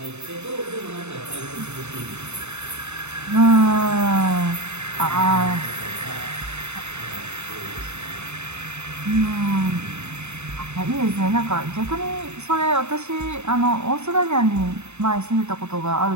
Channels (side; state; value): left; late; 0.82 ms